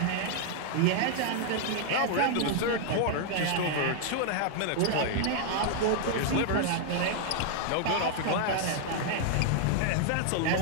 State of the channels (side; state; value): both; different; correlation 0.00